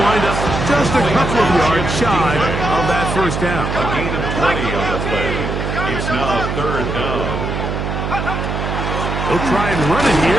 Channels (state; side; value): noise; right; hum, 3 dB below the sound